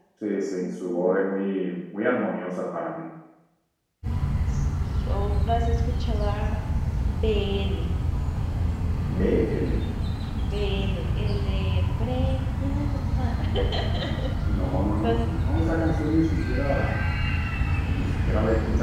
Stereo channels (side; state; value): both; identical; correlation 1.00